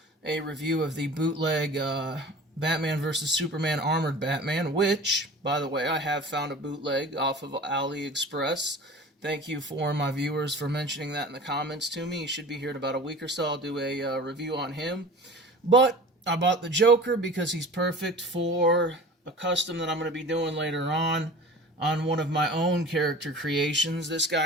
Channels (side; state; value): both; normal; correlation 0.39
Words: a review of the bootleg Batman vs. Superman Armored Batman, which, by the way, I have found a bootleg off of AliExpress. Thank you for my viewers for mentioning that in the comments to me. He should be here in about a week or so. I'll do a review on him. But I bought the Joker because he's perfect for a custom that I'm going to be doing later on one of my own character creations. This